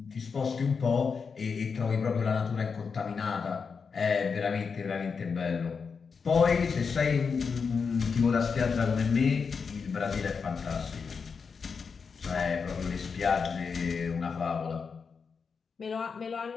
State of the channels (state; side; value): quieter; right; 5.5 dB